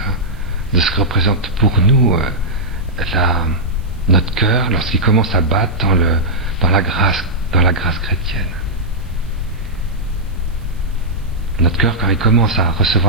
pour nous notre cœur lorsqu'il commence à battre dans la grâce chrétienne. Notre cœur, quand il commence à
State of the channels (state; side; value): noise; right; hiss, 30 dB below the sound